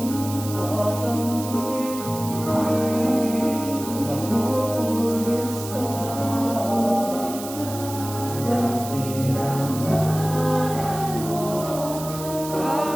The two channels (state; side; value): noise; right; hiss, 11 dB below the sound